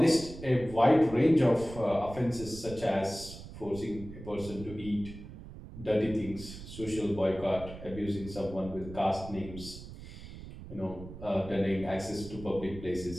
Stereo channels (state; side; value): noise; right; rumble, 13 dB below the sound